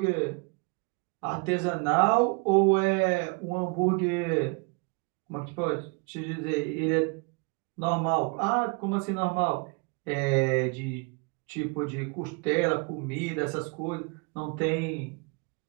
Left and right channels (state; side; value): quieter; left; 31.6 dB